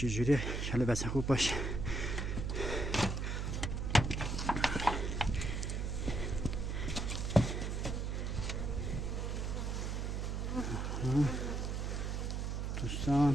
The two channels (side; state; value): right; noise; hum, 1 dB below the sound